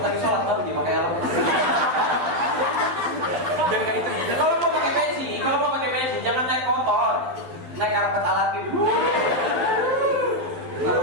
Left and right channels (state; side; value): late; left; 11 ms